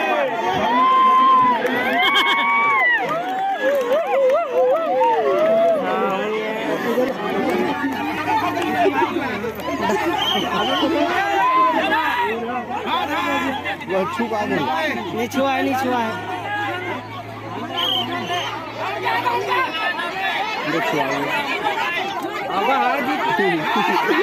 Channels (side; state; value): both; identical; correlation 1.00